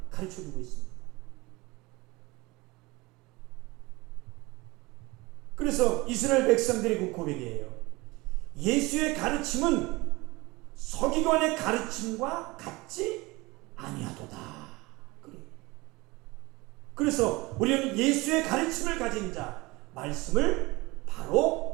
가르쳐 주고 있습니다. 그래서 이스라엘 백성들의 그 고백이에요. 예수의 가르침은 서기관의 가르침과 같지 아니하도다. 그래서 우리는 예수의 가르침을 가진 자, 말씀을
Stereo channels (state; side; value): quieter; left; 22.6 dB